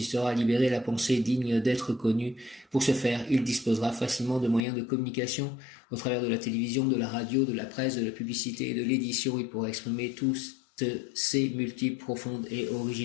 à libérer la pensée digne d'être connue. Pour ce faire, il disposera facilement de moyens de communication au travers de la télévision, de la radio, de la presse, de la publicité et de l'édition. Il pourra exprimer toutes ses multiples, profondes et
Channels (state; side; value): drops out; right; at 4.6 s